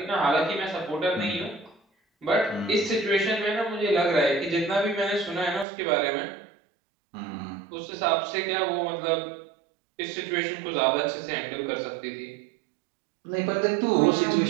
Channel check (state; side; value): drops out; left; at 5.7 s